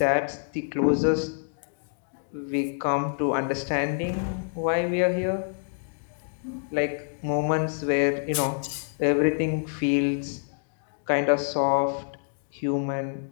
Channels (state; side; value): silent; right; digital silence